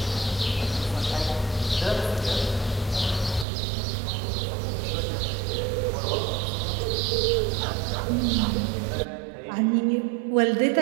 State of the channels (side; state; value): left; drops out; at 3.5 s